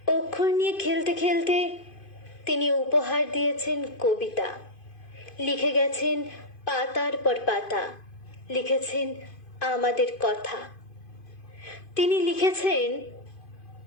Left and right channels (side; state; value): right; late; 2.5 ms